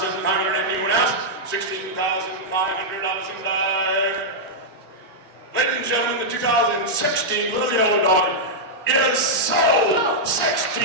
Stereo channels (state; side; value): normal; both; correlation -0.06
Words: anyone else? 16,500 and dive. Ladies and gentlemen, the 2016 Little Yellow Dog is sold!